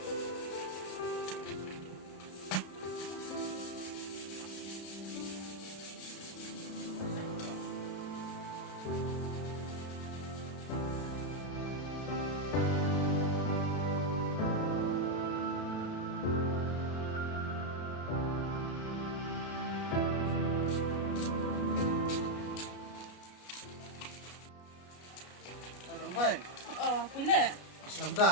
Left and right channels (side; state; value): right; late; 33 ms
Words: Hai. Oh, pilih. Selamat